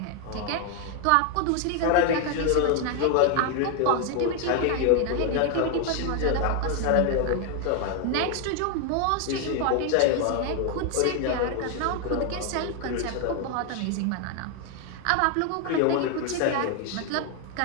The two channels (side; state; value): both; different; correlation 0.01